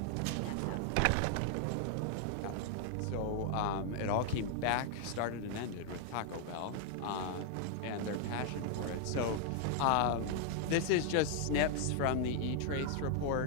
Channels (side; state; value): both; different; correlation 0.00